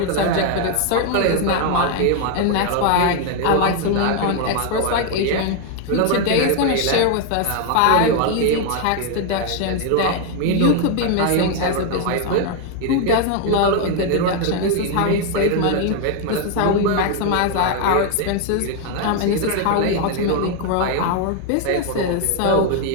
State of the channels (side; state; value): both; different; correlation 0.01